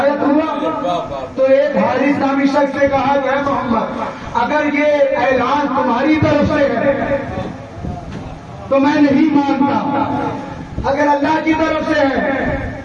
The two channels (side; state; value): both; identical; correlation 1.00